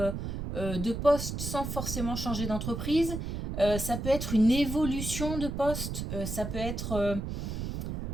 de poste sans forcément changer d'entreprise. Ça peut être une évolution de poste. Ça peut être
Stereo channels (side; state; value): right; noise; rumble, 4 dB below the sound